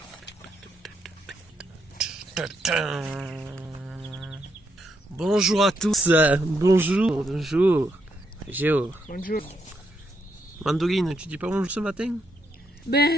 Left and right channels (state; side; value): normal; both; correlation 0.78